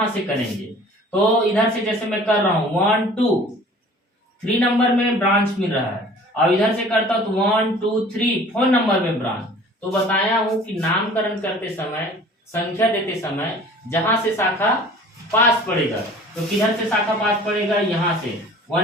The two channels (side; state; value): both; normal; correlation 0.47